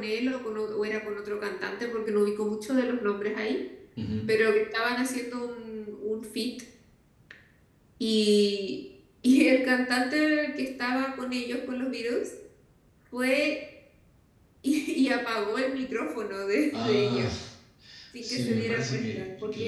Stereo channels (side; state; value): both; identical; correlation 1.00